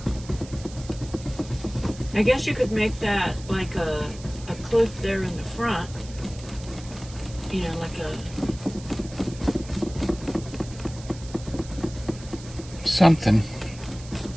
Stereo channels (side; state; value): right; noise; hiss, 18 dB below the sound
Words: I guess you could make that like a cliff there in the front. You know, like a Something.